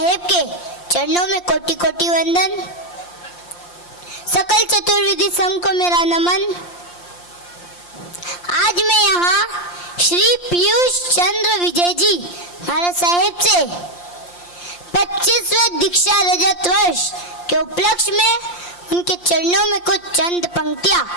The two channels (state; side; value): late; right; 5.7 ms